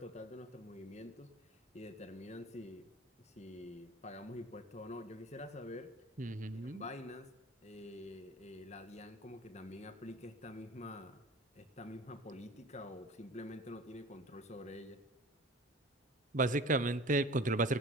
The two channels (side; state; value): both; normal; correlation 0.41